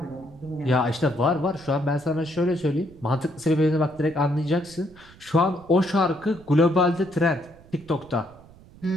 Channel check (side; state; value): right; noise; rumble, 23 dB below the sound